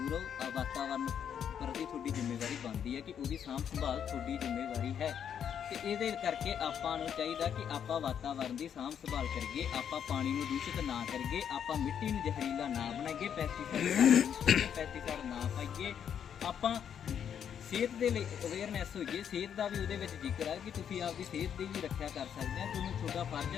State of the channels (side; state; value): right; quieter; 8.5 dB